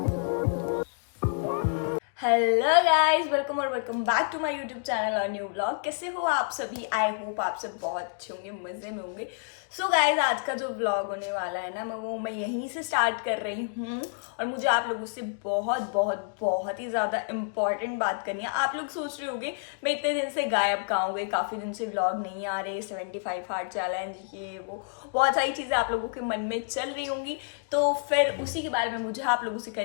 हेलो गाइस, वेलकम और welcome back to my YouTube channel और न्यू ब्लॉग। कैसे हो आप सभी? आई होप आप सब बहुत अच्छे होंगे, मजे में होंगे। सो गाइस, आज का जो ब्लॉग होने वाला है ना, मैं यहीं से स्टार्ट कर रही हूँ और मुझे आप लोगों से बहुत बहुत बहुत ही ज़्यादा इम्पॉर्टेंट बात करनी है। आप लोग सोच रहे होंगे मैं इतने दिन से गायब कहाँ हो गई, काफ़ी दिन से ब्लॉग नहीं आ रहे, 75 हार्ड चैलेंज, ये वो बहुत सारी चीज़ें आप लोगों के मन में चल रही होंगी। तो फिर उसी के बारे में मुझे आप लोगों से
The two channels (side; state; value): right; silent; digital silence